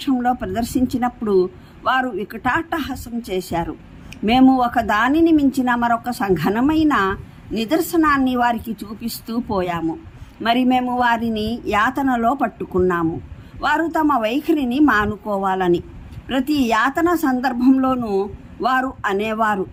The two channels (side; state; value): both; identical; correlation 1.00